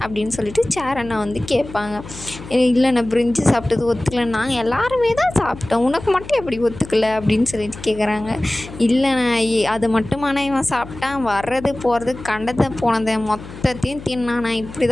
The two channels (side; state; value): left; noise; hum, 15 dB below the sound